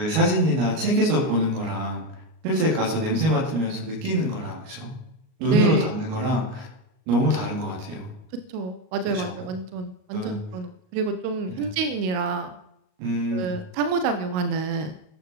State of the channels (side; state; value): left; late; 38 ms